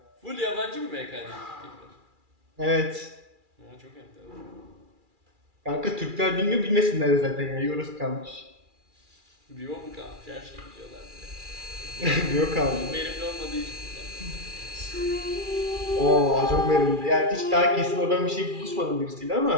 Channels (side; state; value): left; late; 2.4 ms